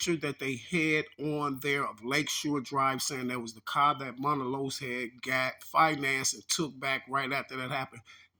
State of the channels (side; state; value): both; identical; correlation 1.00